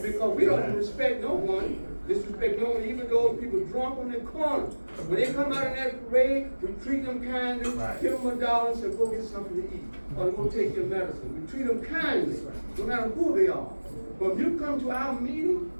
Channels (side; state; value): both; inverted; correlation -1.00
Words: Because we don't respect no one, disrespect no one, even those people drunk on the corner. When they come out in that parade, we treat them kindly, give them $1 and say, go get something to eat. Or go take your medicine. We treat them kindly, no matter who they are. But if you come to our meeting